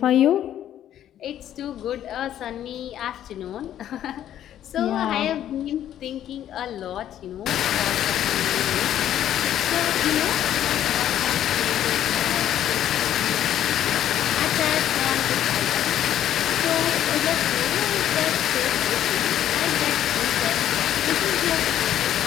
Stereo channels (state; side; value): quieter; right; 11.2 dB